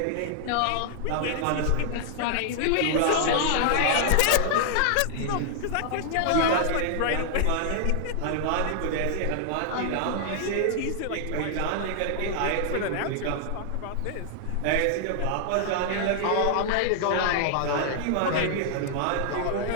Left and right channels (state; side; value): different; both; correlation -0.01